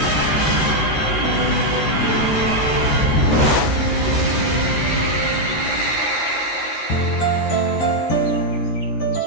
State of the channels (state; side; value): late; right; 13 ms